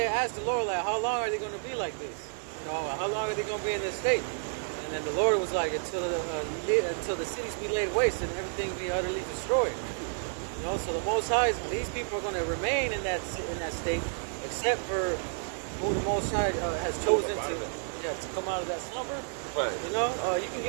asked the Lord, like, how long are they going to be like this? You know, how long are they going to be in this state? And then the Lord was like, until the cities be laid waste and everything be utterly destroyed. You know, so the Most High, these people are going to remain in that state, except for who the Most High has chosen to come out of that slumber. Right. You know, you can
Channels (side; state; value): left; silent; 57 dB below the other